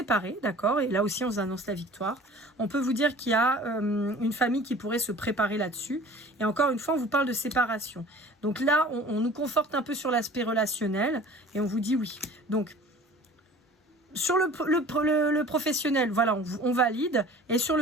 d'accord? Et là aussi, on vous annonce la victoire. On peut vous dire qu'il y a une famille qui pourrait se préparer là-dessus. Et encore une fois, on vous parle de séparation. Donc là, on nous conforte un peu sur l'aspect relationnel et on vous dit oui. Donc, sur le professionnel, voilà, on valide. Et sur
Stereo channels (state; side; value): normal; both; correlation 0.45